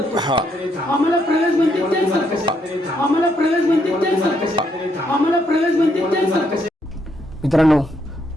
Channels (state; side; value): normal; both; correlation 0.75